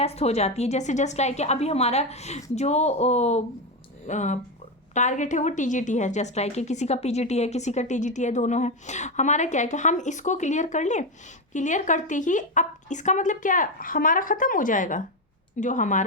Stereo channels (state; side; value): normal; both; correlation 0.11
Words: हो जाती है। जैसे जस्ट लाइक अभी हमारा जो टारगेट है वो TGT है, जस्ट लाइक किसी का PGT है, किसी का TGT है, दोनों है। हमारा क्या है कि हम इसको क्लियर कर लें, क्लियर करते ही अब इसका मतलब क्या, हमारा ख़त्म हो जाएगा जो